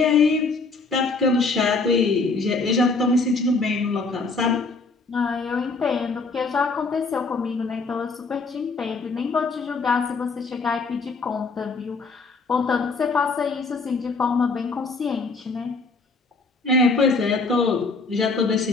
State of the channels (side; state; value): right; quieter; 4.0 dB